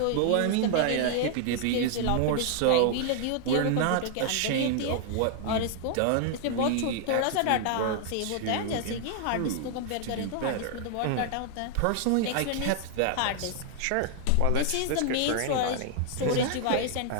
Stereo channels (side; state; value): both; different; correlation 0.00